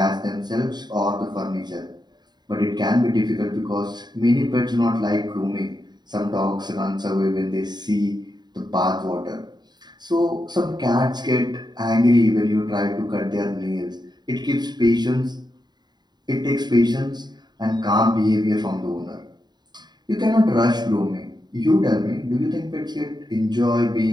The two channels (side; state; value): left; late; 0.20 ms